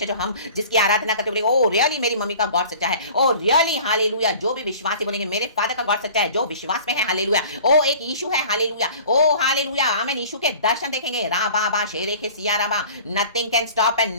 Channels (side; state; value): both; inverted; correlation -0.45